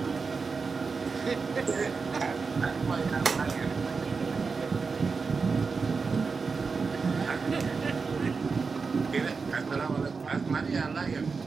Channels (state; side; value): quieter; left; 4.8 dB